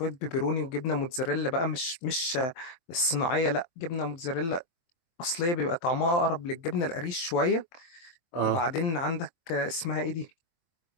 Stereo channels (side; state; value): right; late; 23 ms